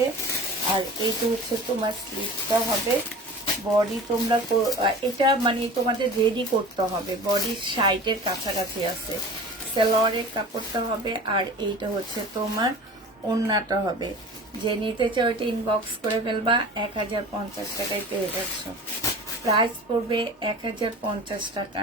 আর এইটা হচ্ছে তোমার স্লিপটা হবে। বডি তোমরা এটা মানে তোমাদের রেডি করতে হবে, বডির সাইডের কাছাকাছি আছে। সালোয়ারের কাপড়টা হবে, আর এইটা হচ্ছে তোমার ওড়নাটা হবে। যে নিতে চাও এটা ইনবক্স করে ফেলবা। 1050 টাকায় পেয়ে যাচ্ছ। প্রাইস পড়বে 1050 টাকা।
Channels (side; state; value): both; normal; correlation 0.38